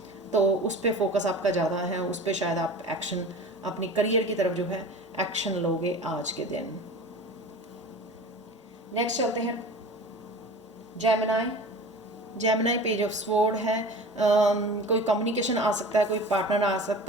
तो उस पर फोकस आपका ज़्यादा है, उस पर शायद आप एक्शन, अपनी करियर की तरफ जो है एक्शन लोगे आज के दिन। नेक्स्ट चलते हैं Gemini. Gemini page of sword है। कोई कम्युनिकेशन आ सकता है, कोई पार्टनर आ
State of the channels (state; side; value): normal; both; correlation 0.37